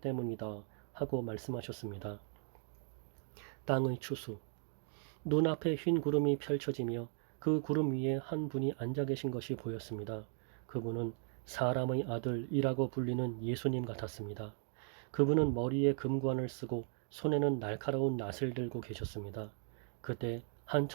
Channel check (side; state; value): left; silent; 53 dB below the other